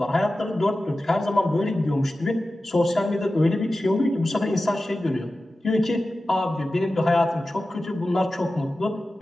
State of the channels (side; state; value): both; normal; correlation 0.94